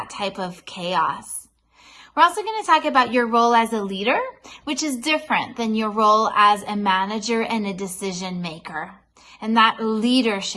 type of chaos? We're also going to talk about your role as a leader, which is different than your role as a manager and a decision maker. And that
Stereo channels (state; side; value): identical; both; correlation 1.00